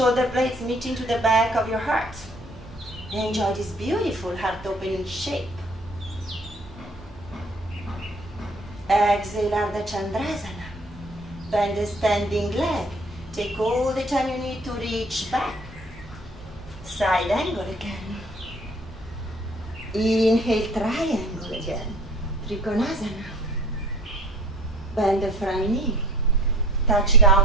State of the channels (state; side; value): normal; both; correlation 0.51